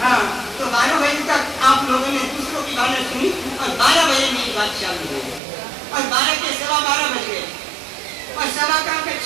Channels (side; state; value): left; drops out; at 5.4 s